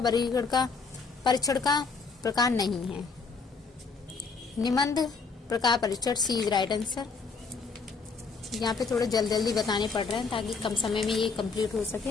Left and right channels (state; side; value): quieter; right; 4.7 dB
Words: वर्गीकरण का परीक्षण का प्रकार नहीं है? निबंध प्रकार परीक्षण। सी इज राइट आंसर। यहाँ पे थोड़ा जल्दी बताने पड़ रहे हैं ताकि कम समय में ये कंप्लीट हो